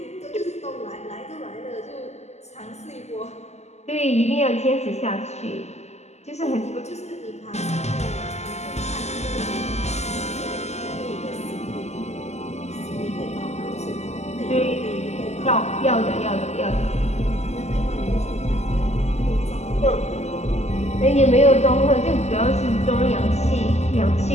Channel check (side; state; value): right; late; 0.32 ms